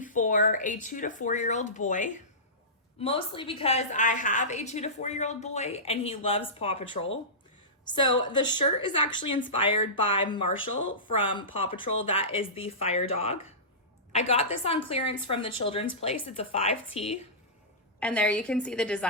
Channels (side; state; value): both; normal; correlation -0.20